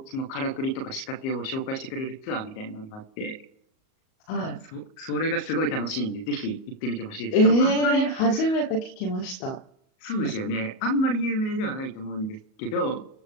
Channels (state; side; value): late; right; 38 ms